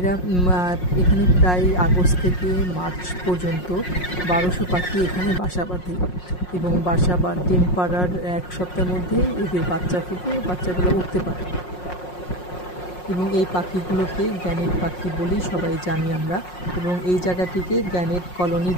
এখানে প্রায় আগস্ট থেকে মার্চ পর্যন্ত 1200 পাখি এখানে বাসা বাঁধে এবং বাসা বা ডিম পাড়ার 1 সপ্তাহের মধ্যেই এদের বাচ্চা ফুটে, বাচ্চাগুলো উঠতে পারে। এবং এই পাখিগুলোকে গ্যানেট পাখি বলেই সবাই জানি আমরা, এবং এই জায়গাটিকে গ্যানেট কলোনি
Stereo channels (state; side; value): late; right; 5.5 ms